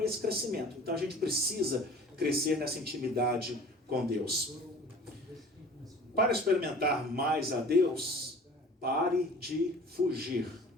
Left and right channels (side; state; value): both; normal; correlation 0.45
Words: esse crescimento. Então a gente precisa crescer nessa intimidade com Deus. Para experimentar mais a Deus, pare de fugir.